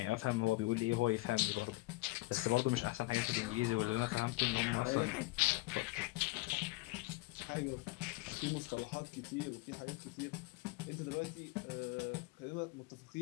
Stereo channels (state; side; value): quieter; right; 21.7 dB